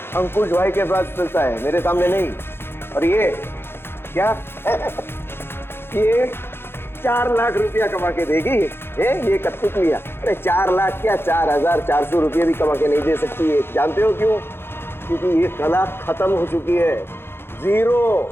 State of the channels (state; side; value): late; right; 0.11 ms